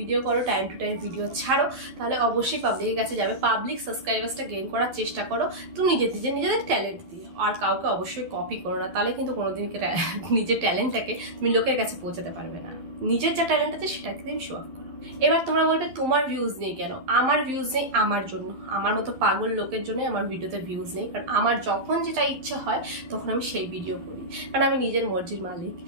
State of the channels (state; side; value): late; left; 12 ms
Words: করো, টাইম টু টাইম ভিডিও ছাড়ো, তাহলে অবশ্যই পাবলিকের কাছে যাবে। পাবলিক সাবস্ক্রাইবার্সটা গেইন করার চেষ্টা করো তুমি নিজেদের ট্যালেন্ট দিয়ে, আর কাউকে অবশ্যই কপি করো না, তাহলে কিন্তু কোনোদিন নিজের ট্যালেন্টটাকে তুমি লোকের কাছে পৌঁছাতে পারবে না। নিজের যা ট্যালেন্ট আছে সেটাকে তুমি শো অফ করো। এবার তোমরা বলবে তোমার ভিউজ নেই কেন? আমার ভিউজ নেই আমার জন্য, আমার মতো পাগল লোকের জন্য আমার ভিডিওতে ভিউজ নেই। কারণ আমার যখন যেটা ইচ্ছে হয় তখন আমি সেই ভিডিও করি, কারণ আমি নিজের মর্জির মালিক।